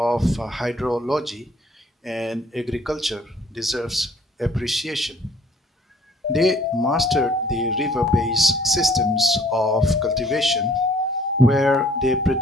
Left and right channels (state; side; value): normal; both; correlation 0.57